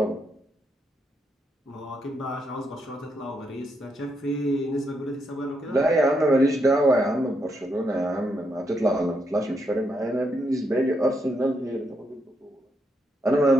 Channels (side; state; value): both; normal; correlation 0.79